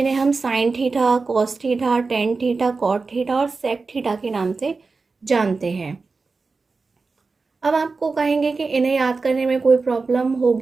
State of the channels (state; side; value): quieter; left; 4.2 dB